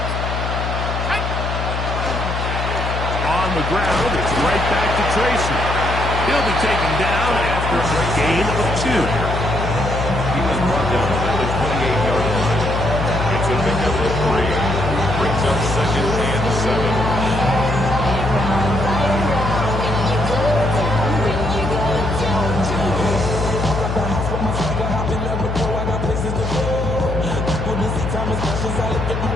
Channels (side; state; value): left; noise; hum, 3 dB below the sound